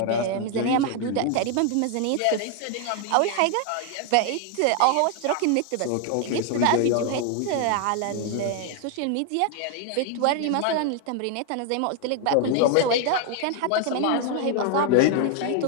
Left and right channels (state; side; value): different; both; correlation 0.00